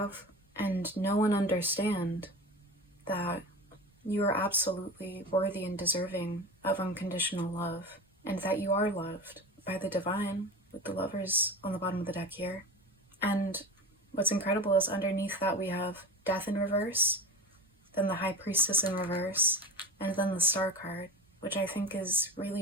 and know and understand that you are absolutely worthy and deserving of unconditional love, and that you are loved by the divine, with the Lovers on the bottom of the deck here. And what's incredible is underneath that we have Death in reverse, then the High Priestess in reverse, and then the Star card, which I think is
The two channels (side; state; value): both; normal; correlation 0.29